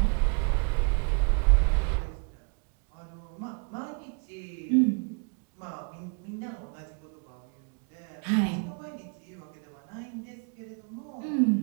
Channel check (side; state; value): left; quieter; 37.9 dB